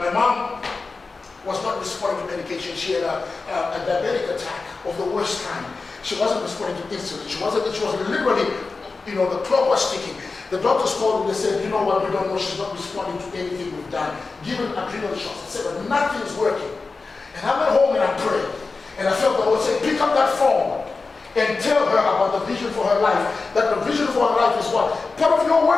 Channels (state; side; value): quieter; right; 4.1 dB